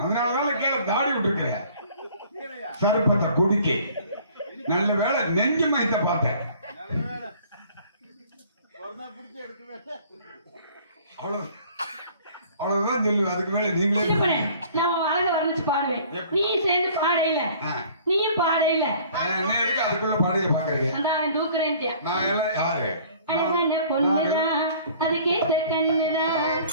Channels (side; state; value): both; inverted; correlation -0.52